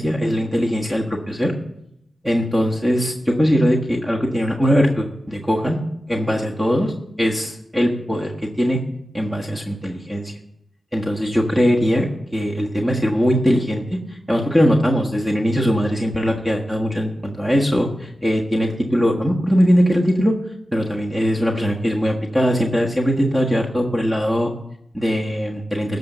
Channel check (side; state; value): both; normal; correlation 0.93